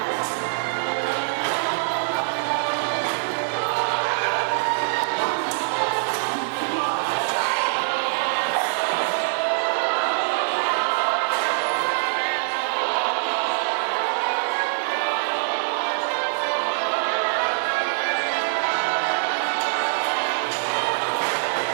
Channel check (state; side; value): silent; left; 58 dB below the other